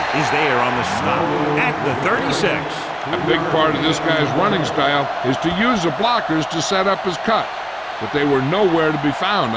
is there on the stop at the 36. A big part of this guy's running style is to use the blockers to set up his cut, but they were nowhere to be found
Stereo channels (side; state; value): both; identical; correlation 1.00